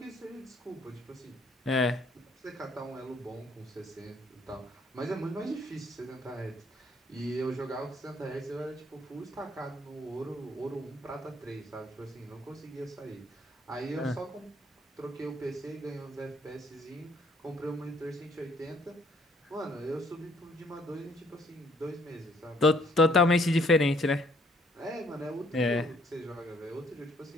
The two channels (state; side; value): normal; both; correlation 0.64